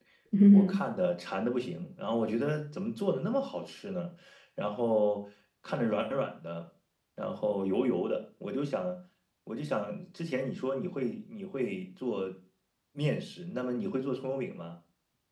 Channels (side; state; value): both; identical; correlation 1.00